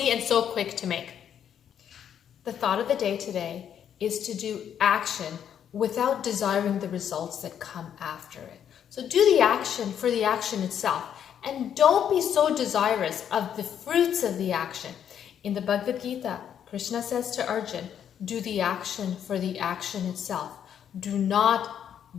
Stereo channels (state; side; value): quieter; right; 9.1 dB